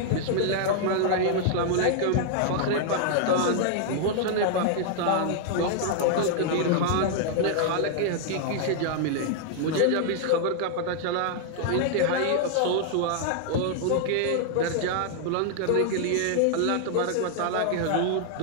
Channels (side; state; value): both; different; correlation 0.00